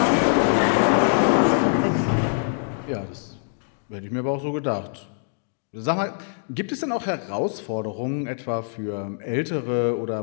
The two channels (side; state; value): right; silent; digital silence